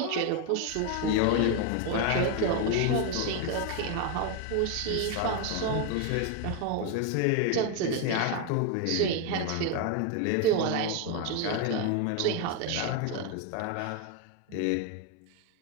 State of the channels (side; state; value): both; different; correlation 0.01